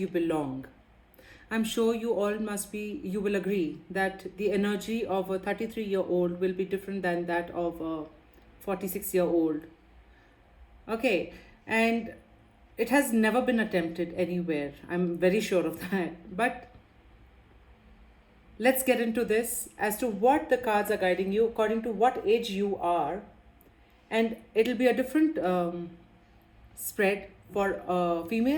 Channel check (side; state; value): both; identical; correlation 1.00